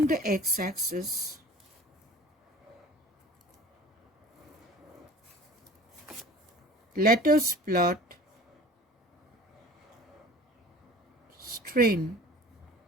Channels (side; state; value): both; normal; correlation 0.44